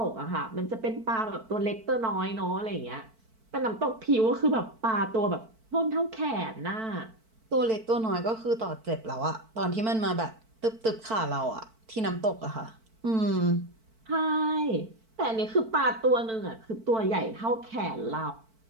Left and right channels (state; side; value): late; left; 4.5 ms